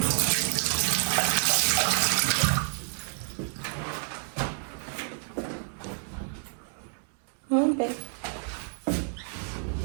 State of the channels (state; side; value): silent; left; 59 dB below the other